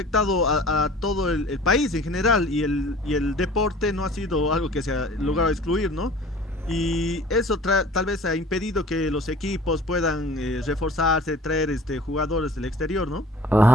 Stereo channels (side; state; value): both; normal; correlation 0.46